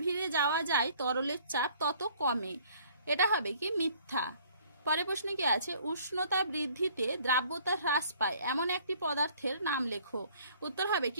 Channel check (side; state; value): both; inverted; correlation -0.57